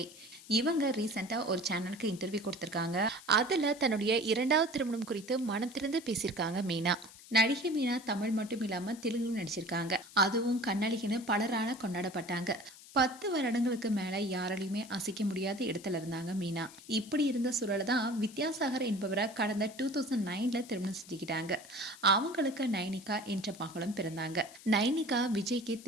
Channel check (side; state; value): left; noise; hiss, 19 dB below the sound